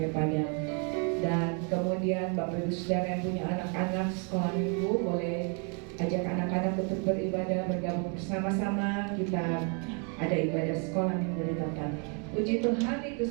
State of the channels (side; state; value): left; quieter; 37.9 dB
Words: Dan kemudian Bapak Ibu Saudara yang punya anak-anak sekolah minggu boleh ajak anak-anak untuk beribadah bergabung bersama-sama. Kita ada ibadah sekolah minggu di tempat. Puji Tuhan, itu